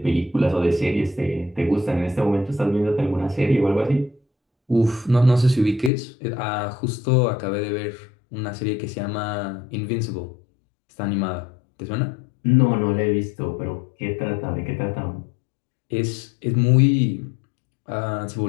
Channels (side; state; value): right; drops out; at 5.9 s